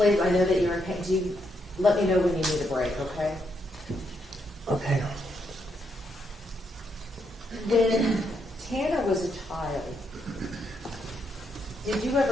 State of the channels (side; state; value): both; normal; correlation 0.78